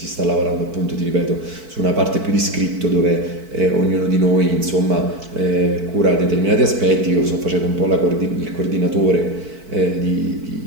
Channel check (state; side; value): late; left; 4.5 ms